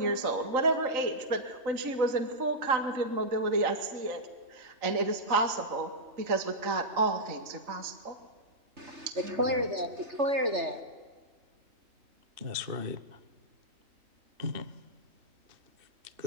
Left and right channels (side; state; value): left; late; 3.9 ms